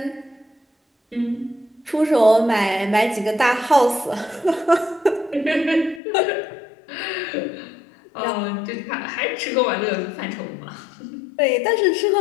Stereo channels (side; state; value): right; drops out; at 6.0 s